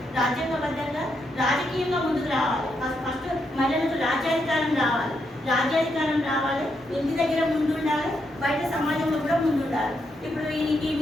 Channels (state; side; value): normal; both; correlation 0.80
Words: రాజ్యాంగబద్ధంగా రాజకీయంగా ముందుకు రావాలి. ఫస్ట్ మహిళలకు రాజ్యాధికారం రావాలి. ఇంటి దగ్గర ముందు ఉండాలి, బయట సమాజంలో కూడా ముందు ఉండాలి. ఇప్పుడు ఈ